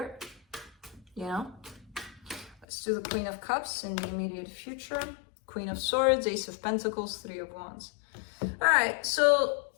You know? Let's do the Queen of Cups in the immediate future. Queen of Swords, Ace of Pentacles, Three of Wands. All right, so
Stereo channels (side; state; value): right; drops out; at 2.7 s